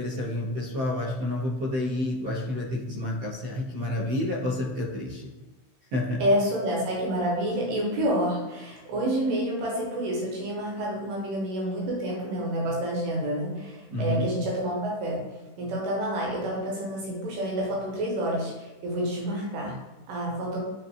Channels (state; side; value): late; left; 16 ms